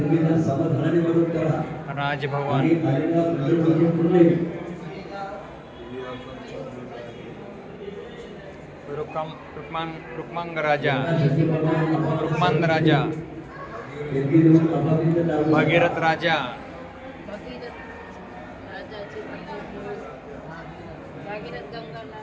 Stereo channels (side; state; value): both; identical; correlation 1.00